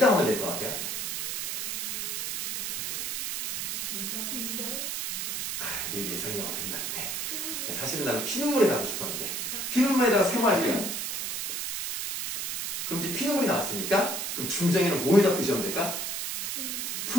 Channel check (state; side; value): noise; right; hiss, 2 dB below the sound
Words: 하면 될 것 같아요? 내 예상이가 끝났네. 사실은 나는 피눈물에 하고 싶었는데 피눈물에다가 세모할게요. 그럼 이제 피눈물이 나왔으니까 그럼 중장에는 뭐에다 표시하면 될까?